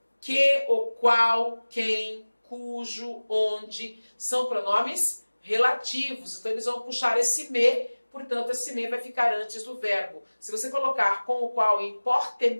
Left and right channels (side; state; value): both; inverted; correlation -1.00